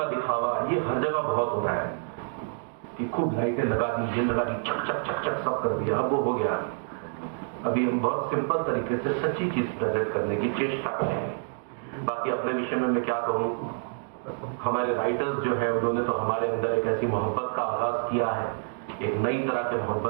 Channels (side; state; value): left; silent; 60 dB below the other